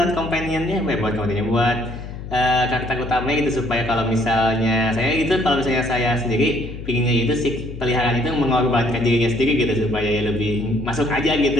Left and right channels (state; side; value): noise; left; hum, 10 dB below the sound